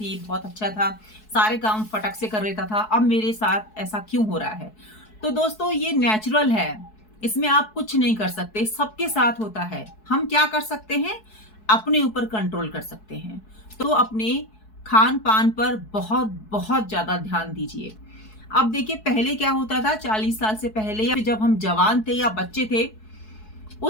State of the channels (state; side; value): late; right; 4.7 ms